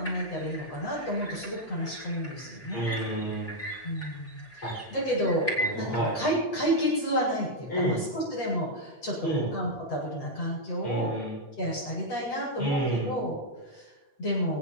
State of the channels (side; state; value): right; late; 8.5 ms